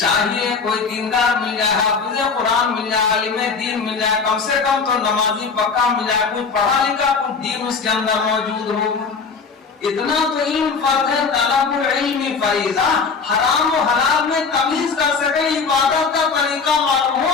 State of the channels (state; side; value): quieter; right; 5.1 dB